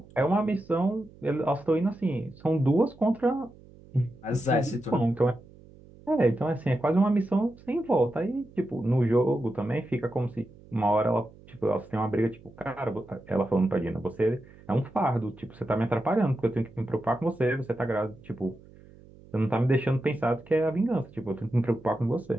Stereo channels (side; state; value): right; noise; hum, 23 dB below the sound